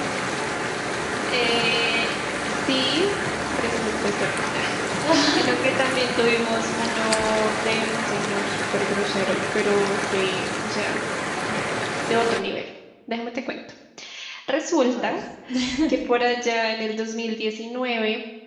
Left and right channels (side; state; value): both; identical; correlation 1.00